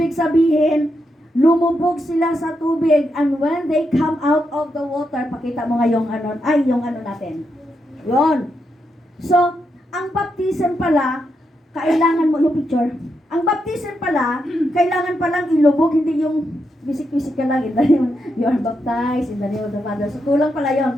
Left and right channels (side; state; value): both; normal; correlation 0.83